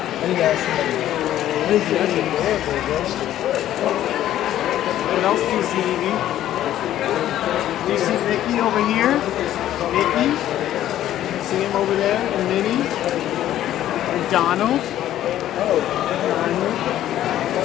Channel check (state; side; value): quieter; right; 12.5 dB